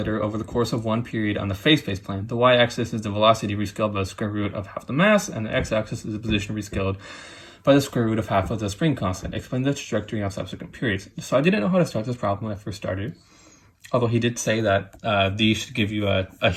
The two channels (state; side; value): identical; both; correlation 1.00